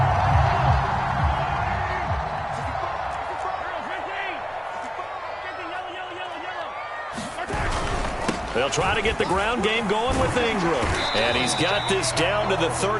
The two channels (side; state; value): both; identical; correlation 1.00